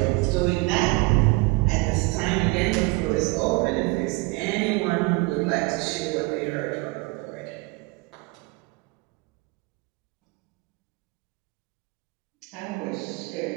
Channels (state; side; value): quieter; left; 24.7 dB